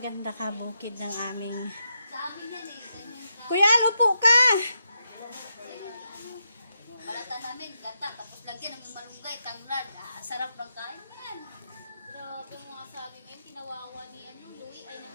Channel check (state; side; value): inverted; both; correlation -0.84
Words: kabukid ng aming... Kuya, lupo ka! Balata namin, gata, tapos lagyan ng malunggay, tanglad. Sarap ng kain yan. Grabe mga sabi ngayon, kinawawa ni Louie ay nang